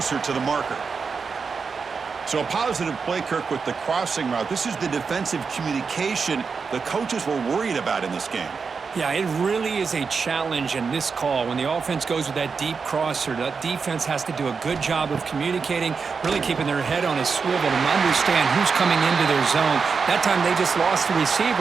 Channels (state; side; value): quieter; left; 5.3 dB